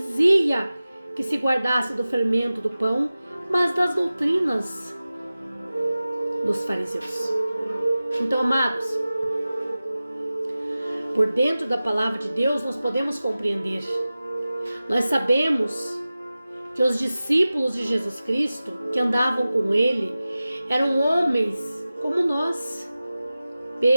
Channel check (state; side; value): inverted; both; correlation -0.96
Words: que se guardasse do fermento do pão, mas das doutrinas dos fariseus. Então, amados, por dentro da palavra de Deus nós podemos compreender. Nós sabemos que os discípulos de Jesus Cristo que andavam com ele eram homens como nós.